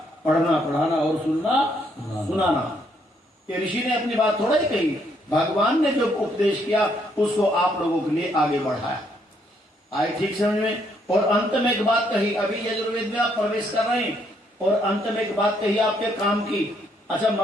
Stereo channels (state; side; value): normal; both; correlation 0.72